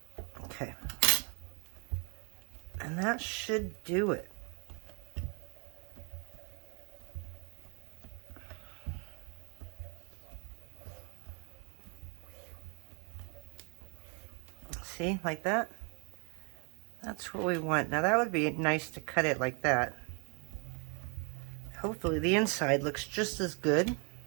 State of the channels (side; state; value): left; quieter; 35.6 dB